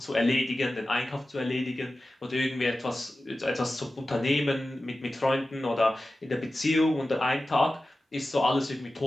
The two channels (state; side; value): normal; both; correlation 0.95